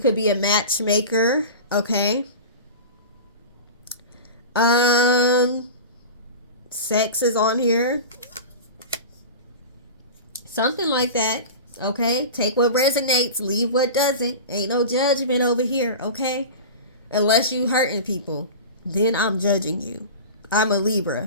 be a matchmaker, okay? Sex is on here, something like that. Okay, take what resonates, leave what doesn't. Ain't no judgment over here, okay? Unless you hurting people, then I'm judging you. I'm a Libra.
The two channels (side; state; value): both; inverted; correlation -0.31